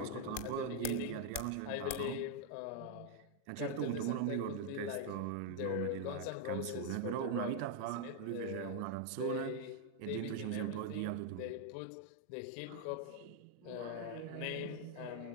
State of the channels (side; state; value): both; different; correlation 0.00